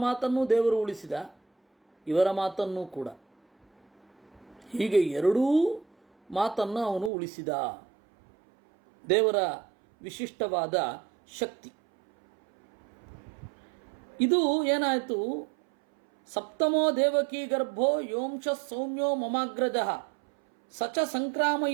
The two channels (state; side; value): drops out; left; at 7.1 s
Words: ಮಾತನ್ನು ದೇವರು ಉಳಿಸಿದ, ಇವರ ಮಾತನ್ನು ಕೂಡ. ಹೀಗೆ 2 ಮಾತನ್ನು ಅವನು ಉಳಿಸಿದ. ದೇವರ ವಿಶಿಷ್ಟವಾದ ಶಕ್ತಿ ಇದು. ಏನಾಯಿತು? ಸಪ್ತಮೋ ದೇವಕೀ ಗರ್ಭೋ ಯೋಂಶ ಸೌಮ್ಯೋ ಮಮಾಗ್ರಜ ಸಚ